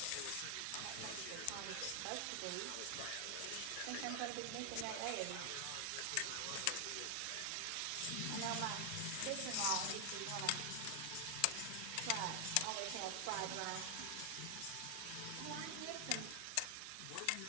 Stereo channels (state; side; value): different; both; correlation 0.00